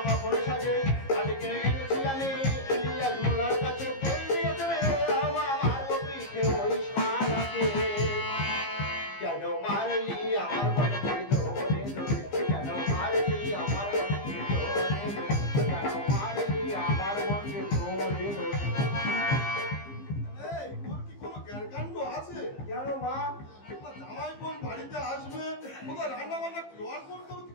ফুল সাজে। কাছে কিনে এনেছি আমি ইলিয়াস মোল্লার কাছে, কেন মারলি আমার বরকে ধরে ধরে, কেন মারলি আমার বরকে ধরে ধরে, কেন মারলি আমার বরকে ধরে ধরে। এই তোর কি কোনো জ্ঞানকাণ্ড আছে? কেন মা? জামাই বোন বাড়িতে আসবে, কোথায় রান্না বান্না জোয়ার করতে হবে,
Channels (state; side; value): late; right; 15 ms